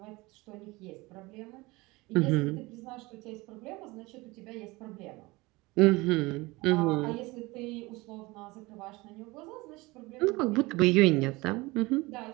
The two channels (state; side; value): quieter; left; 22.5 dB